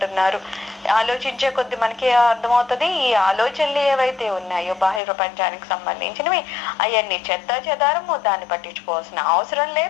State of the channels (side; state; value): right; drops out; at 5.0 s